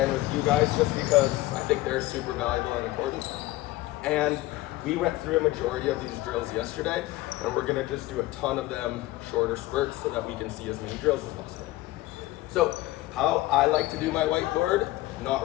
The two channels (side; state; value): right; quieter; 17.8 dB